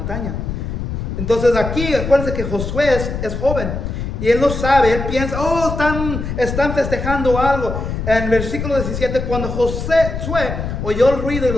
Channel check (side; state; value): left; noise; rumble, 4 dB below the sound